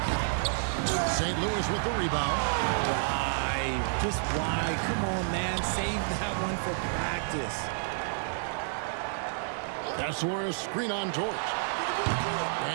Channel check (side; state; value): left; silent; digital silence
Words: St. Louis with the rebound. Why? Just why? Come on, man. Save that one for practice. Kessler, a screen on George.